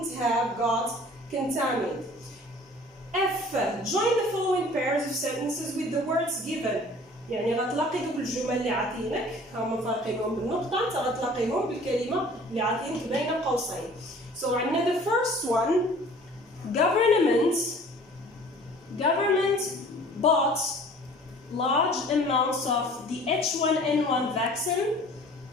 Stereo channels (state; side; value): normal; both; correlation 0.49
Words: have got contaminated. F. Join the following pairs of sentences with the words given. يعني غتلاقي دوك الجمل اللي عاطينك هما فارقينهم بالنقطة انت غتلاقيهم بالكلمة اللي عاطينك بين قوسين. So عندنا the first one government bought large amounts of the H1N1 vaccine.